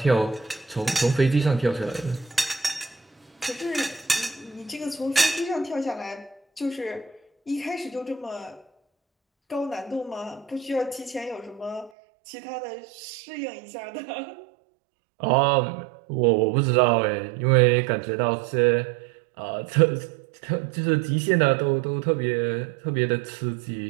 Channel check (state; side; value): drops out; left; at 11.9 s